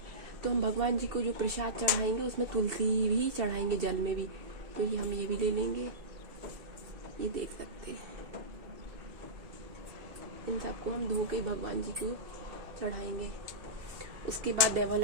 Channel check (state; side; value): late; left; 2.7 ms